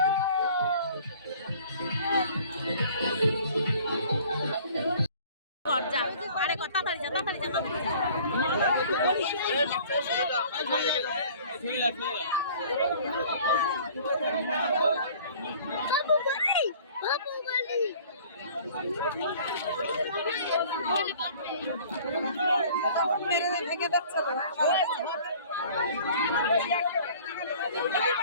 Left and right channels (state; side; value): inverted; both; correlation -0.50